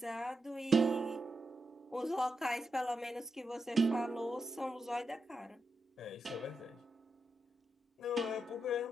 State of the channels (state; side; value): normal; both; correlation 0.86